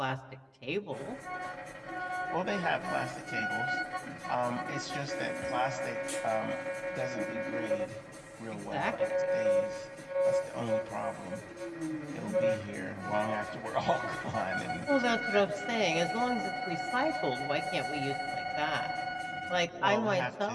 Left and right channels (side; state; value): both; identical; correlation 1.00